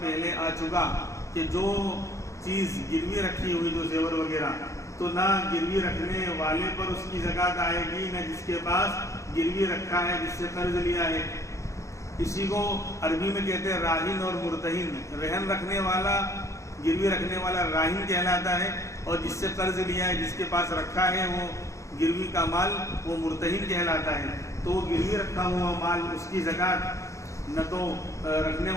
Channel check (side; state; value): right; late; 0.15 ms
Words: آ چکا کہ جو چیز گروی رکھی ہوئی، جو زیور وغیرہ، تو نہ گروی رکھنے والے پر اس کی زکوٰۃ آئے گی، نہ جس کے پاس گروی رکھا ہے، جس سے قرض لیا ہے۔ اسی کو عربی میں کہتے ہیں راہن اور مرتہن۔ رہن رکھنے والا، گروی رکھنے والا راہن کہلاتا ہے، اور جس سے قرض لیا ہے، جس کے پاس رکھا ہے وہ گروی کا مال، وہ مرتہن کہلاتا ہے۔ تو وہ گروی رکھا ہوا مال، اس کی زکوٰۃ نہ تو رکھنے